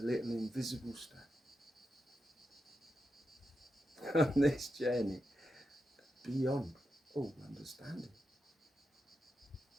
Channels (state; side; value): normal; both; correlation 0.87